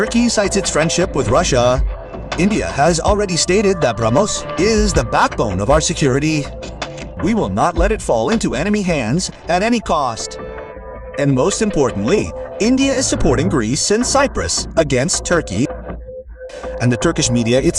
cites its friendship with Russia, India has already stated that Brahmos is the backbone of our security. We will not let it fall into enemy hands at any cost. And most importantly, India is supporting Greece and Cyprus against Turkey. And the Turkish media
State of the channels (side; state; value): both; identical; correlation 1.00